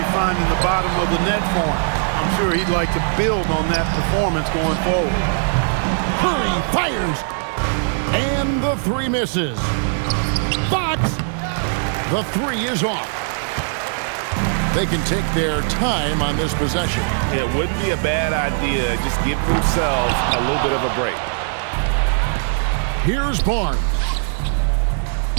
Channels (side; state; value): left; silent; digital silence